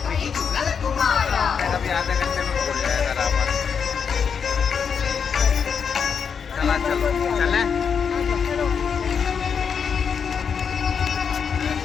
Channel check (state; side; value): quieter; right; 6.6 dB